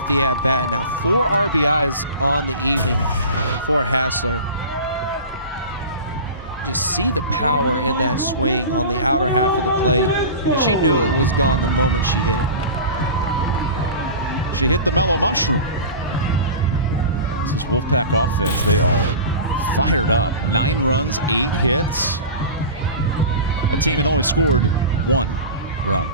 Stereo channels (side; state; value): both; inverted; correlation -0.33